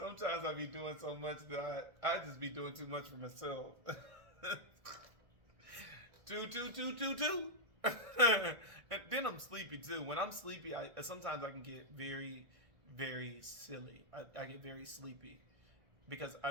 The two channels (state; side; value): late; left; 1.6 ms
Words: I be doing so much that I just be doing too much for myself. 2, 2, 2, 2, 2. And then I'm sleepy too. When I'm sleepy, sometimes I can get very, very silly. I get very sleepy because